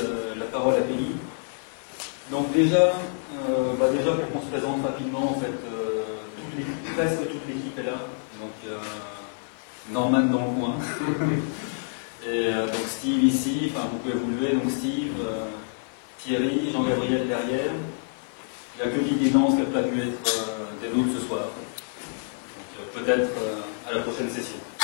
la parole à Peggy. Donc déjà pour qu'on se présente rapidement, en fait, presque toute l'équipe est là. Donc Norman dans le coin. Et donc Steve ici, enfin vous pouvez vous lever, donc Steve, Thierry, Jean-Gabriel derrière. Il n'y a que Didier Nance qui n'a pas pu être des nôtres ce soir. Peut-être à la prochaine session.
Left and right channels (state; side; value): silent; right; 57 dB below the other